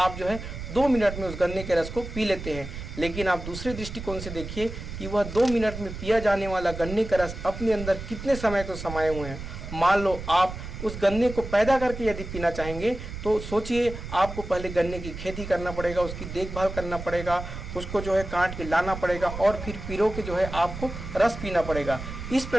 जो है 2 मिनट में उस गन्ने के रस को पी लेते हैं। लेकिन आप दूसरे दृष्टिकोण से देखिए कि वह 2 मिनट में पिया जाने वाला गन्ने का रस अपने अंदर कितने समय को समाये हुए हैं। मान लो आप उस गन्ने को पैदा करके यदि पीना चाहेंगे तो सोचिए, आपको पहले गन्ने की खेती करना पड़ेगा, उसकी देखभाल करना पड़ेगा, उसको जो है काट के लाना पड़ेगा और फिर पिरो के जो है आपको रस पीना पड़ेगा। इस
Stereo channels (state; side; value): noise; right; rumble, 9 dB below the sound